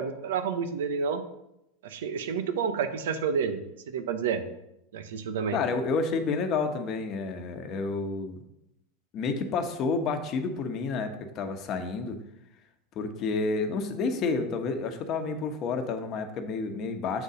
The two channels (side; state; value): both; normal; correlation 0.17